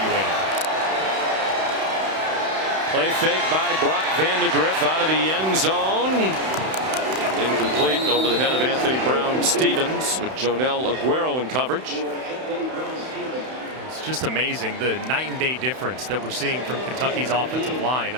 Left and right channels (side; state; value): left; late; 31 ms